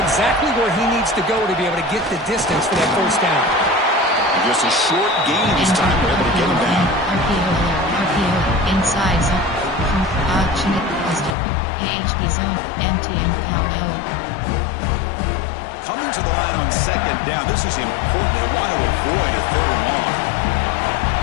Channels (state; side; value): drops out; right; at 11.4 s